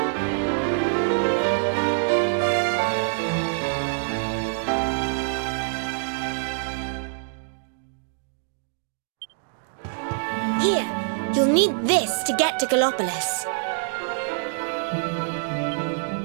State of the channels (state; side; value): silent; left; digital silence